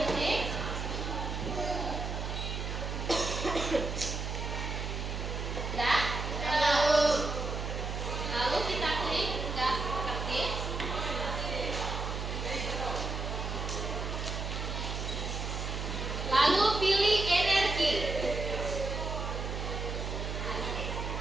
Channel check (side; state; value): right; noise; hum, 3 dB below the sound